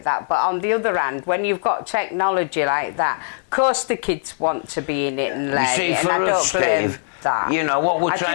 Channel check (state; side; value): silent; right; digital silence